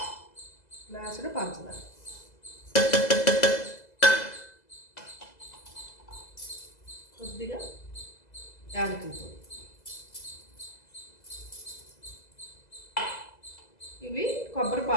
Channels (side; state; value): right; late; 2.0 ms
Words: గ్లాసుడు పంచదార, కొద్దిగా యాలకుల పొడి. ఇవి కొబ్బరి